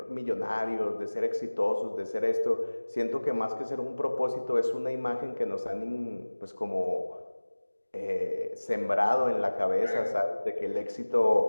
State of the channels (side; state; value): both; inverted; correlation -1.00